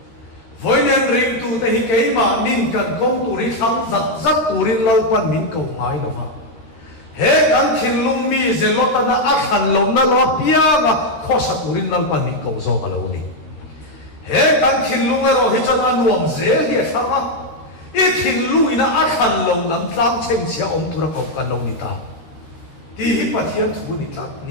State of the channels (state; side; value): late; right; 13 ms